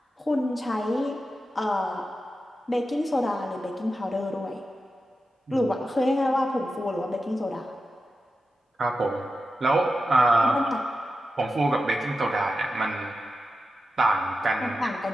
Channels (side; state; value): both; normal; correlation 0.90